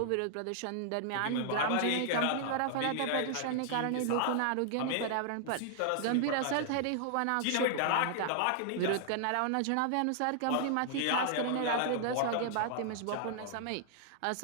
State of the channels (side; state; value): both; different; correlation -0.01